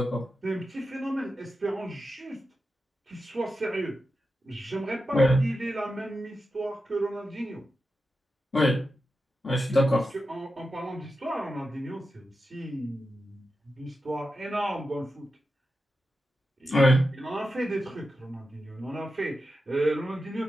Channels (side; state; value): both; normal; correlation 0.90